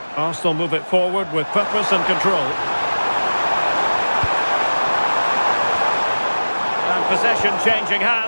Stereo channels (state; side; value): inverted; both; correlation -1.00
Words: Arsenal move it forward with purpose and control. And possession changing